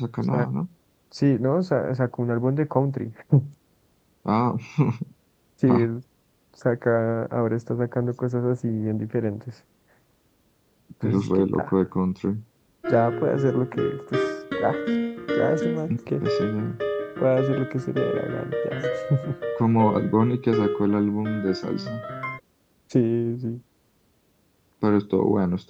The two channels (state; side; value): identical; both; correlation 1.00